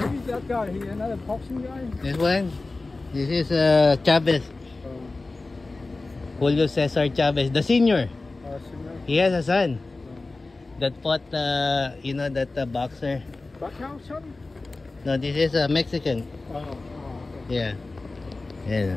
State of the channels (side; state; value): right; quieter; 3.3 dB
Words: that guy? He another boxing guy? This one? This is Chavez. Julio Cesar Chavez, the senior. He has a son that fought, that boxer. Backhouse son? No, this is a Mexican. Yeah.